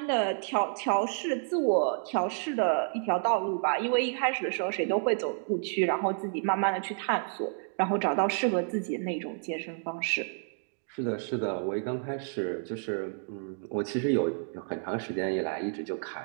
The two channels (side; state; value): left; silent; 58 dB below the other